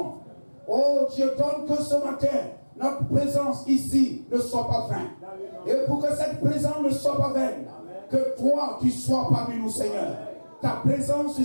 Oh Dieu, donne que ce matin, notre présence ici ne soit pas vaine. Et pour que cette présence ne soit pas vaine, que toi tu sois parmi nous, Seigneur. Ta présence est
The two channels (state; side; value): inverted; both; correlation -1.00